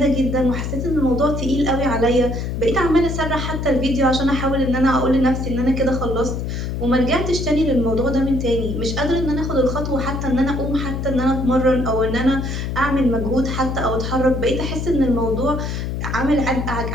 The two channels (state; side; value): noise; left; hum, 3 dB below the sound